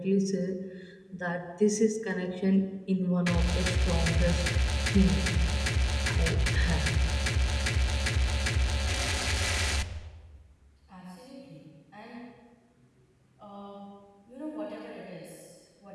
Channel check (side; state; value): both; identical; correlation 1.00